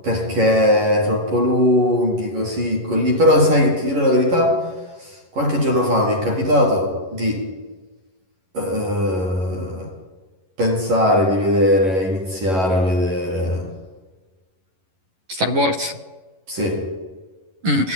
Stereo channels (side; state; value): left; late; 11 ms